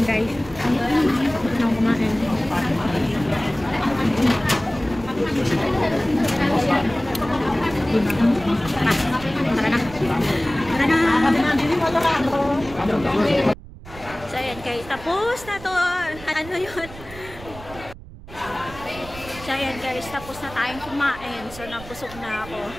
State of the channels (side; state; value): right; noise; rumble, 17 dB below the sound